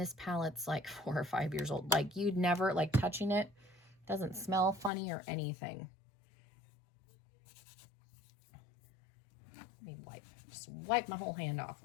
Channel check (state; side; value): drops out; right; at 4.9 s